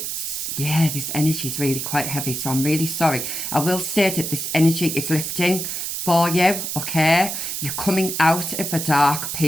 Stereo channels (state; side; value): noise; right; hiss, 4 dB below the sound